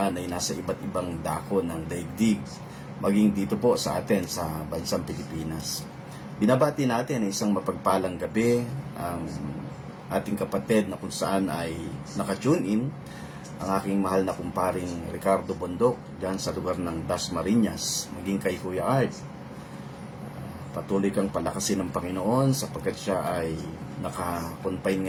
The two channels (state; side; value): identical; both; correlation 1.00